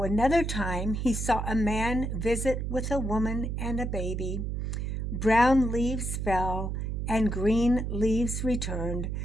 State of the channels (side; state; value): right; noise; hum, 2 dB below the sound